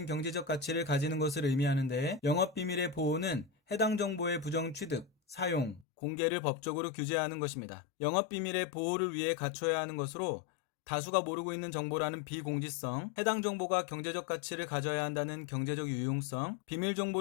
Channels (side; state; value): right; drops out; at 5.9 s